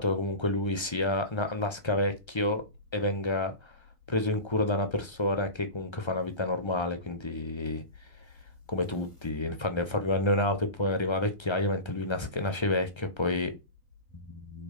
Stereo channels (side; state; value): right; late; 1.3 ms